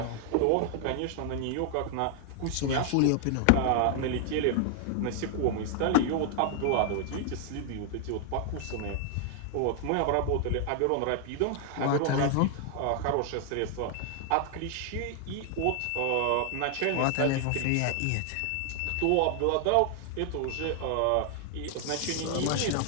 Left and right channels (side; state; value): both; different; correlation 0.00